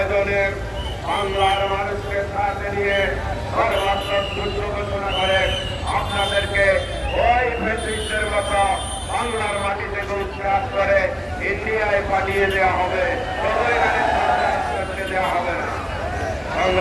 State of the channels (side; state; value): both; identical; correlation 1.00